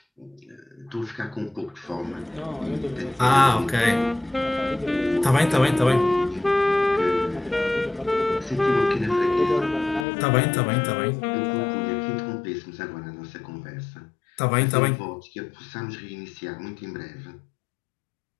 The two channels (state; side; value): drops out; right; at 10.1 s